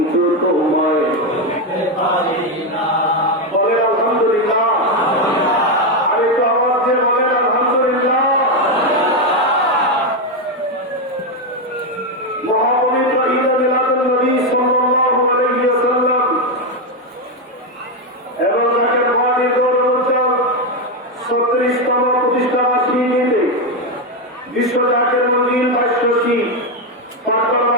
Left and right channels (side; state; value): both; normal; correlation 0.06